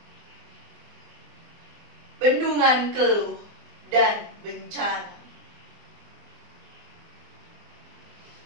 bendungan keluh dan bencana.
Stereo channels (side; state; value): left; late; 24 ms